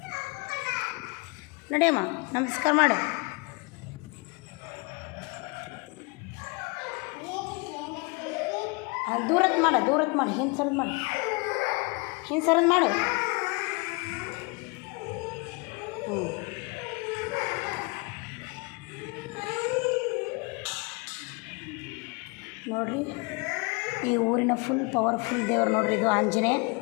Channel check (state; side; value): quieter; right; 30.0 dB